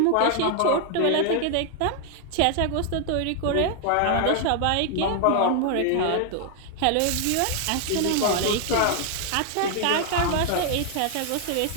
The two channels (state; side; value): different; both; correlation 0.00